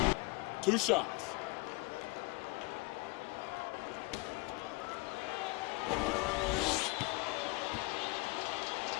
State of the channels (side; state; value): right; quieter; 24.3 dB